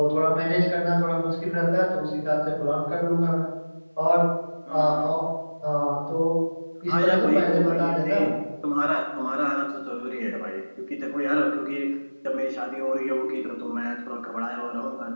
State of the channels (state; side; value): inverted; both; correlation -1.00